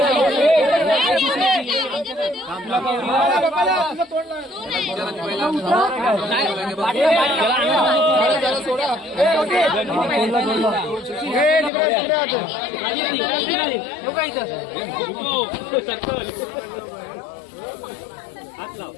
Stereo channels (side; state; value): right; drops out; at 11.7 s